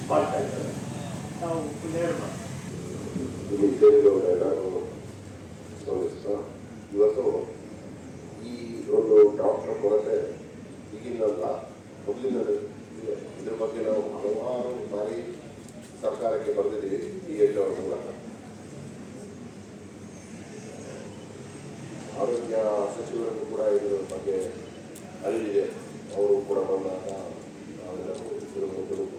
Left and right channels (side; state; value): both; identical; correlation 1.00